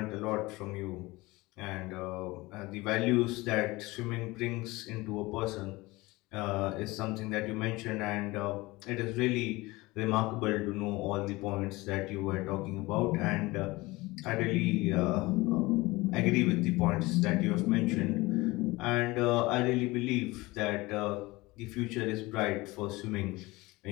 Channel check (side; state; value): right; quieter; 21.5 dB